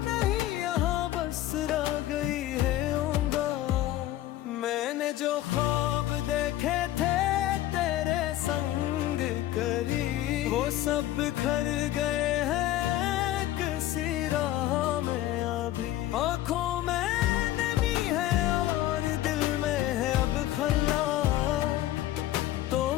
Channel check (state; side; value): quieter; right; 14.2 dB